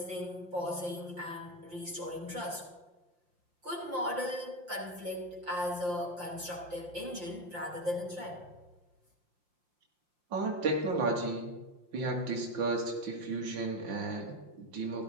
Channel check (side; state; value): left; late; 5.7 ms